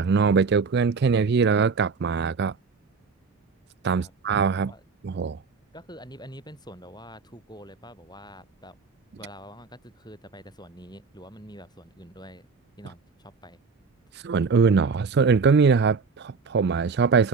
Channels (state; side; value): quieter; left; 4.9 dB